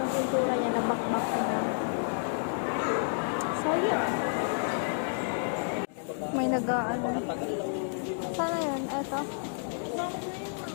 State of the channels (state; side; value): silent; right; digital silence